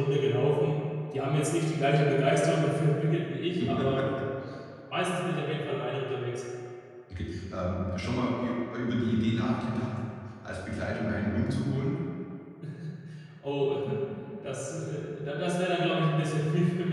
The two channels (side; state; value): both; identical; correlation 1.00